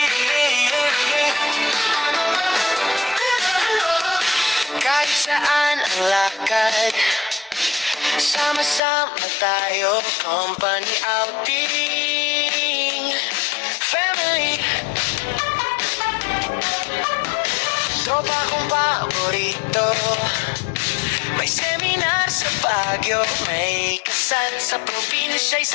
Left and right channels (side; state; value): right; drops out; at 8.8 s